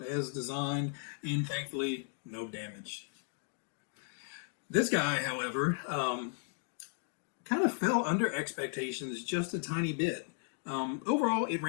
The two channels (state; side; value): silent; right; 54 dB below the other